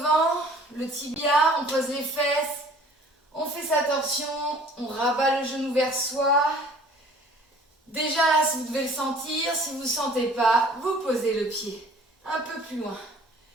le tibia, on pose les fesses. On fait sa torsion, on rabat le genou vers soi. Déjà là, si vous devez le sentir, si vous ne sentez pas, vous posez le pied un peu plus loin.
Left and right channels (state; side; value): normal; both; correlation 0.51